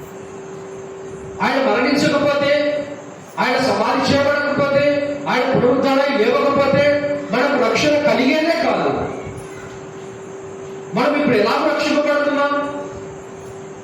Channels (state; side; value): identical; both; correlation 1.00